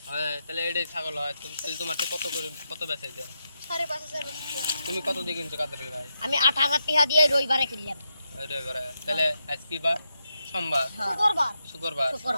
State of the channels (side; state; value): both; inverted; correlation -0.84